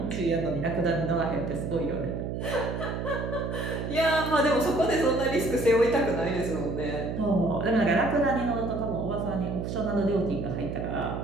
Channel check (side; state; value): right; noise; hum, 4 dB below the sound